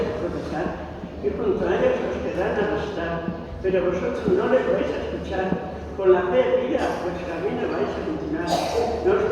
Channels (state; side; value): identical; both; correlation 1.00